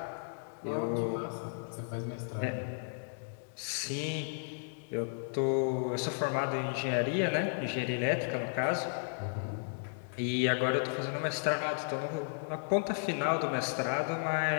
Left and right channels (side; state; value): right; silent; digital silence